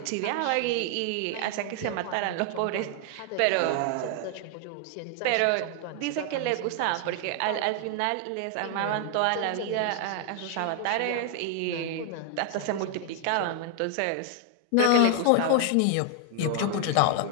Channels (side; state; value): both; different; correlation 0.00